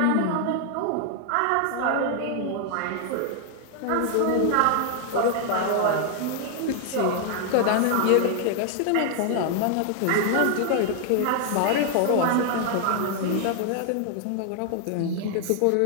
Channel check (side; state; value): both; different; correlation 0.00